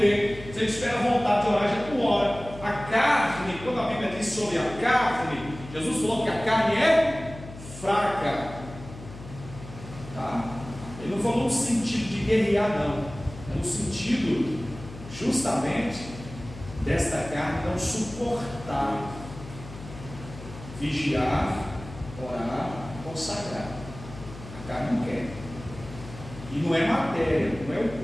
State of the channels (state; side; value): noise; left; hum, 14 dB below the sound